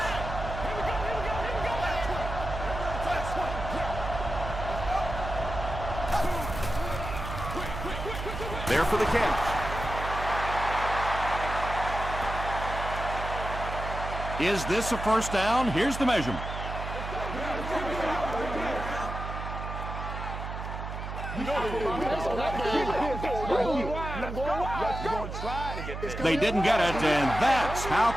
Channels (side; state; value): right; noise; hum, 7 dB below the sound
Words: There for the catch. Is this a first down? Here's the measurement. They didn't get it, and that's how